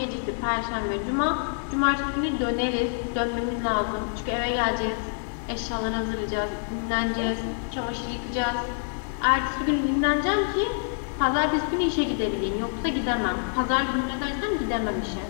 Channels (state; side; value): silent; right; 61 dB below the other